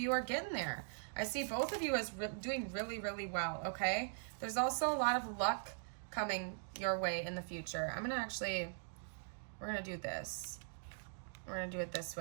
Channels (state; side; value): silent; left; digital silence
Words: are getting there. I see both of you as doing really, really well, okay? There's also a lot of luck coming your way in the future. We're gonna do this. We're gonna do it this